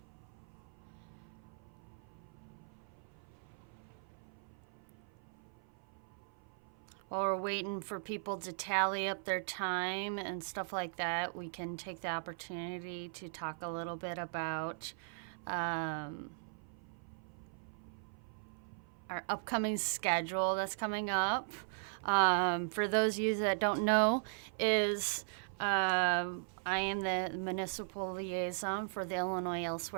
While we're waiting for people to tally up their time and stuff like that, we can take the opportunity to talk a little bit about our upcoming schedule that's coming up. For those of you that don't know, I am the municipal liaison for the Illinois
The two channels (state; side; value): silent; left; 52 dB below the other